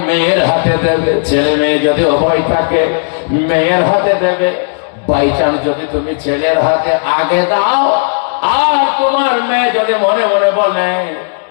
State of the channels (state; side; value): silent; right; digital silence